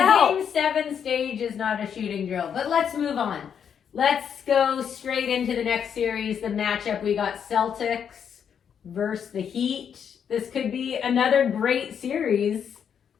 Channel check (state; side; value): quieter; right; 7.9 dB